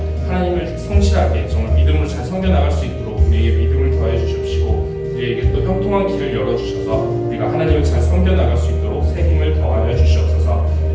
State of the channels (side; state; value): both; identical; correlation 1.00